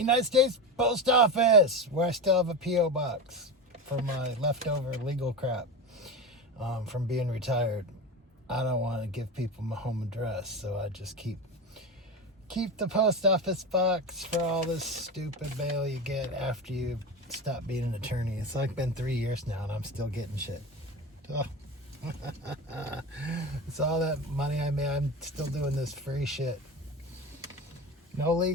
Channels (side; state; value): both; normal; correlation 0.23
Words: States Post Office, where I still have a P.O. box for my leftover legal crap from being retired. I don't want to give people my home address, so I just keep the post office box for all this stupid mail you get after you stop being an attorney. It's like been 3 years now, and I'm still getting shit. Oh. It's all that money I made. I'm still doing this free shit. No